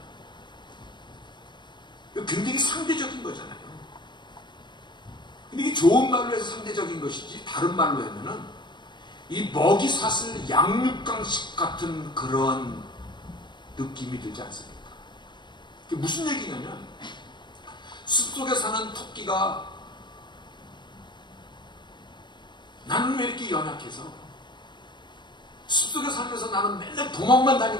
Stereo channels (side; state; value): right; late; 0.22 ms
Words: 이거 굉장히 상대적인 거잖아요. 근데 이게 좋은 말로 해서 상대적인 것이지, 다른 말로 하면은 이 먹이 사슬 양육강식 같은 그런 느낌이 들지 않습니까? 이게 무슨 얘기냐면, 숲속에 사는 토끼가 나는 왜 이렇게 연약해서 숲속에 살면서 나는 맨날 도망만